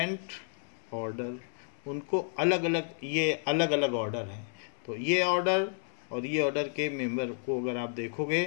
ऑर्डर, उनको अलग अलग, ये अलग अलग ऑर्डर हैं. तो ये ऑर्डर और ये ऑर्डर के मेंबर को अगर आप देखोगे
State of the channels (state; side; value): silent; right; digital silence